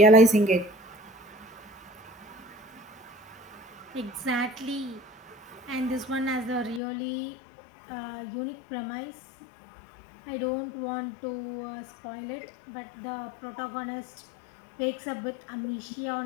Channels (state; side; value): drops out; right; at 6.8 s